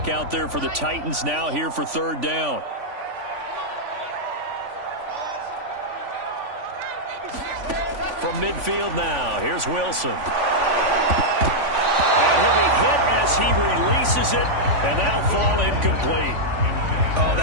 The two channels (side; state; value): left; late; 3.5 ms